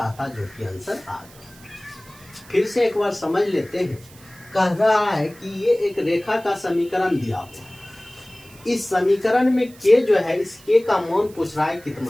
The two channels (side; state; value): right; noise; hiss, 23 dB below the sound